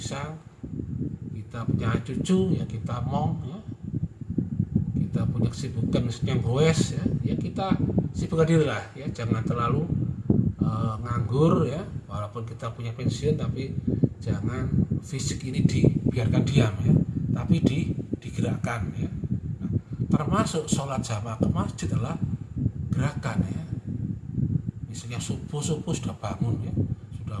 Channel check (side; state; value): both; identical; correlation 1.00